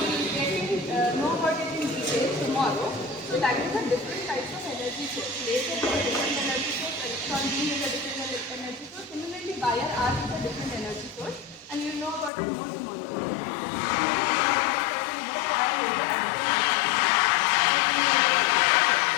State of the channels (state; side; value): drops out; right; at 12.3 s